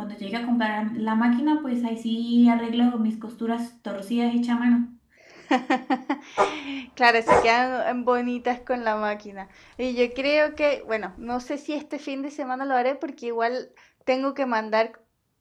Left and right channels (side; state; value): both; identical; correlation 1.00